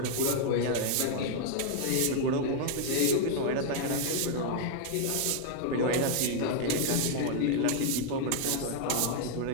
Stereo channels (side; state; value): both; different; correlation 0.00